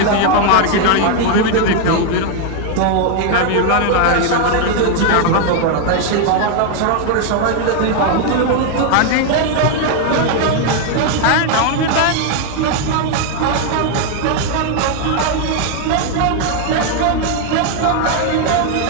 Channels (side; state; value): both; different; correlation 0.00